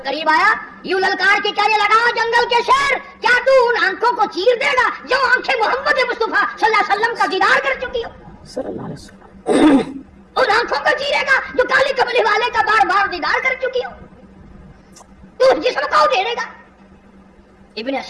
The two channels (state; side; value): identical; both; correlation 1.00